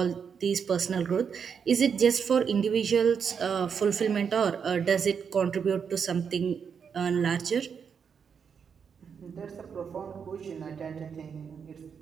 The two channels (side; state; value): left; quieter; 6.7 dB